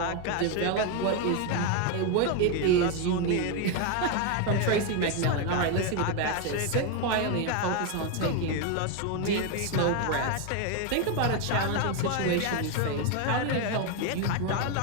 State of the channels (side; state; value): both; different; correlation 0.01